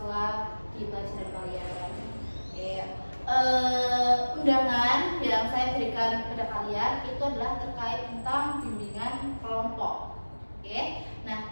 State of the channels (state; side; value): inverted; both; correlation -1.00